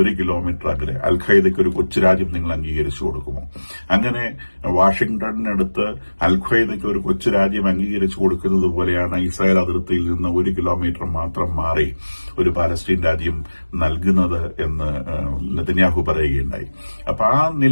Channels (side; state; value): both; inverted; correlation -1.00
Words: 1 കിലോമീറ്റർ അകലെ അൽ-ഖ്വയ്ദയ്ക്ക് ഒരു കൊച്ചു രാജ്യം നിങ്ങൾ അംഗീകരിച്ചു കൊടുക്കുമോ? അങ്ങനെ വാഷിംഗ്ടണിനടുത്ത് അൽ-ഖ്വയ്ദയ്ക്ക് ഒരു കൊച്ചു രാജ്യം അംഗീകരിച്ചു കൊടുക്കുന്നത് പോലെയാണ് ഇസ്രായേൽ അതിർത്തിയിൽ നിന്ന് 1 കിലോമീറ്റർ മാത്രം മാറി ഒരു പാലസ്തീൻ രാജ്യം നൽകുന്നത് എന്ന് നെതന്യാഹു പറയുകയുണ്ടായി. അപ്പൊ ആ